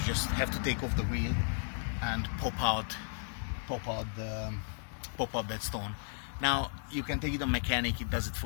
just have to take off the wheel and pop out that stone. Now you can take it on mechanic, it does it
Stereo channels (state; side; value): silent; right; digital silence